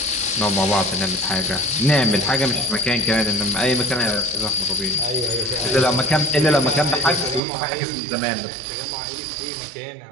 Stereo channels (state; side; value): drops out; left; at 7.4 s